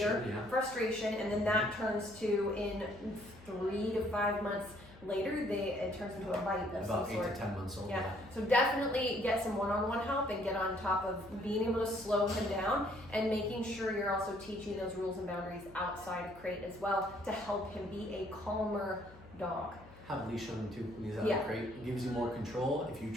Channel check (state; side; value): noise; left; hum, 21 dB below the sound